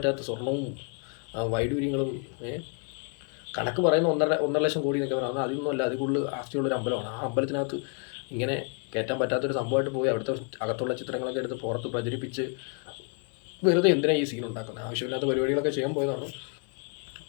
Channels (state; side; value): quieter; right; 38.5 dB